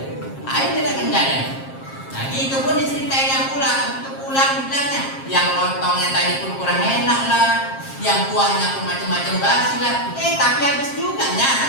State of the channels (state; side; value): late; right; 7.5 ms